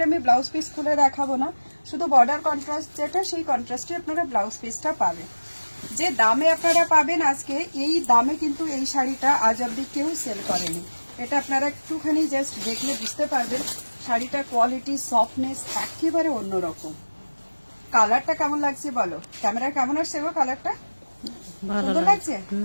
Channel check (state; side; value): inverted; both; correlation -1.00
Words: আমি ব্লাউজ পিস খুলে দেখাবো না, শুধু বর্ডার কন্ট্রাস্ট যেটা, সেই কন্ট্রাস্টে আপনারা ব্লাউজ পিসটা পাবেন। যে দামে আপনারা পাবেন আজকে, এই দামে কিন্তু এই শাড়িটা আজ অব্দি কেউ সেল করেনি। এটা আপনারা একটুখানি জাস্ট দেখলে বুঝতে পারবেন শাড়িটার কোয়ালিটি, সফটনেস একেবারে অন্যরকম। কালারটা কেমন লাগছে বলো, ক্যামেরা কেমন আসছে গো? কালারটা সুন্দর লাগছে।